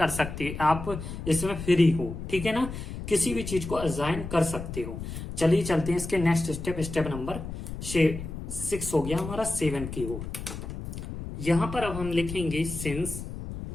सकते हो, आप इसमें फ्री हो, ठीक है ना। किसी भी चीज को असाइन कर सकते हो। चलिए चलते हैं इसके नेक्स्ट स्टेप, स्टेप नंबर 6 हो गया हमारा 7 की ओर। यहां पर अब हम लिखेंगे सिंस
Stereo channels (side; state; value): left; noise; rumble, 8 dB below the sound